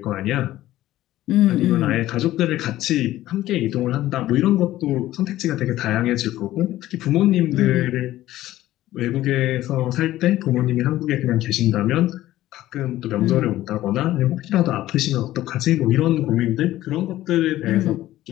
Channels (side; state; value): right; quieter; 14.9 dB